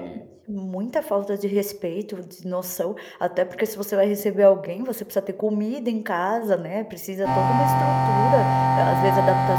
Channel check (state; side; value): identical; both; correlation 1.00